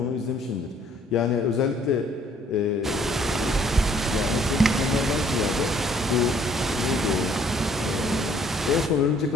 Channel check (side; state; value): both; normal; correlation 0.61